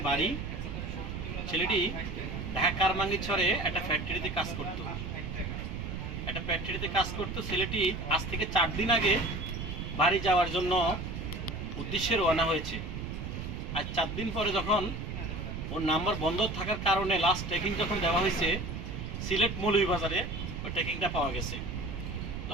বাড়ি। ছেলেটি ঢাকা কারমাঙ্গিছড়ে একটা ফ্যাক্টরিতে কাজ করতো। ছেলেটি আজ থেকে ৪ দিন আগে বাড়ি যাওয়ার জন্য উদ্দেশ্যে রওনা হয়েছে। আর ৪ দিন পরে যখন ওর নাম্বার বন্ধ থাকার কারণে লাস্ট ট্রেকিং যখন দেওয়া হয়েছে সিলেট মৌলভীবাজারে, ওই ট্রেকিংটা পাওয়া গেছে।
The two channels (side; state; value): right; noise; rumble, 6 dB below the sound